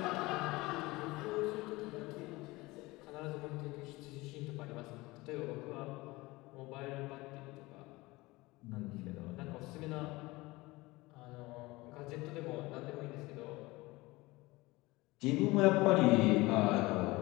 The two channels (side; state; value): right; quieter; 21.3 dB